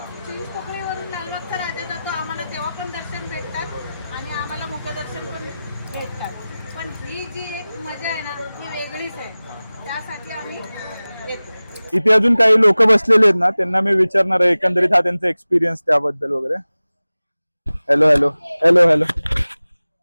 चिंचपोकळीवरून लालबागचा राजा जातो, आम्हाला तेव्हा पण दर्शन भेटतात आणि आम्हाला मुखदर्शन पण भेटतात. पण ही जी एक मजा आहे ना, ती वेगळीच आहे. त्यासाठी आम्ही येतो. इथे अजून काही लोक बसलेले आहेत ना, त्यांना मी विचारणार आहे एकंदरीत हा त्यांचा एक्सपिरियन्स त्याबद्दल वगैरे. हॅलो हॅलो हॅलो हॅलो,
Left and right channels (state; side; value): inverted; both; correlation -0.97